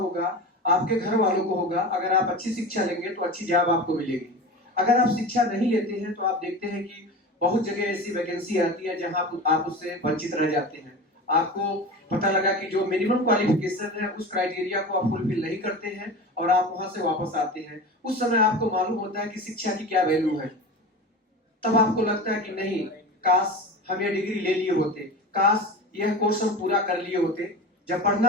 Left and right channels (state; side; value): normal; both; correlation 0.30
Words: आपके घर वालों को होगा। अगर आप अच्छी शिक्षा लेंगे तो अच्छी जॉब आपको मिलेगी। अगर आप शिक्षा नहीं लेते हैं तो आप देखते हैं कि बहुत जगह ऐसी वैकेंसी आती है जहां आप उससे वंचित रह जाते हैं। आपको पता लगा कि जो मिनिमम क्वालिफिकेशन है उस क्राइटेरिया को आप फुलफिल नहीं करते हैं और आप वहां से वापस आते हैं। उस समय आपको मालूम होता है कि शिक्षा की क्या वैल्यू है। तब आपको लगता है कि नहीं, काश हम ये डिग्री ले लिए होते, काश यह कोर्स हम पूरा कर लिए होते। जब